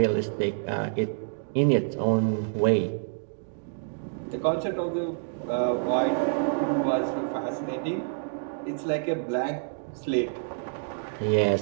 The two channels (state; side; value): silent; left; digital silence